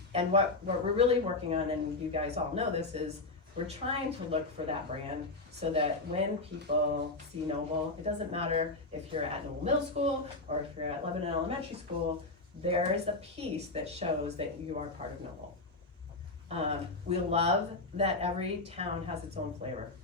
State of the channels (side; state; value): right; quieter; 3.2 dB